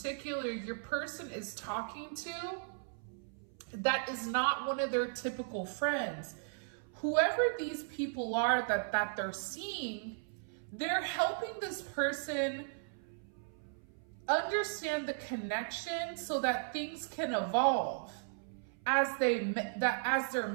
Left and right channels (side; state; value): left; silent; 54 dB below the other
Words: your person is talking to that is not one of their typical friends. Whoever these people are that they're seeing, they're helping this person understand the connection so that things can evolve as